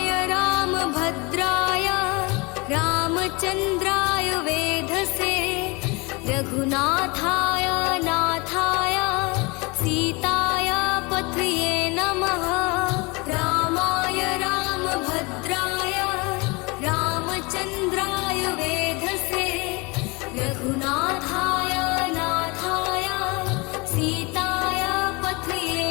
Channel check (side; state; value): right; quieter; 27.1 dB